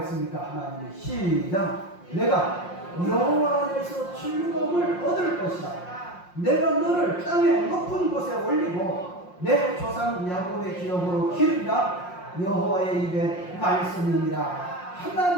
하나님이 시작. 내가 여호와 안에서 즐거움을 얻을 것이다. 내가 너를 땅의 높은 곳에 올리고 내 조상 야곱의 기업으로 기르리라. 여호와의 입에 말씀이니라.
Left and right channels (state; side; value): late; right; 5.6 ms